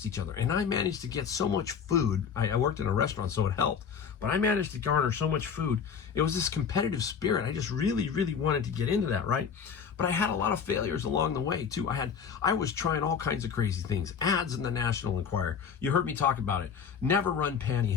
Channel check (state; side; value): quieter; right; 6.8 dB